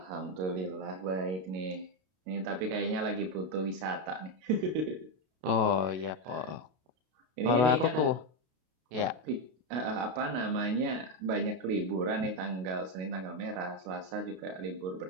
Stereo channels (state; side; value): late; left; 32 ms